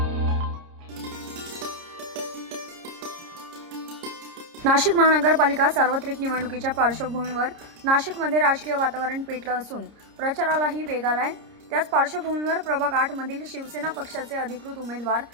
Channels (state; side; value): late; left; 30 ms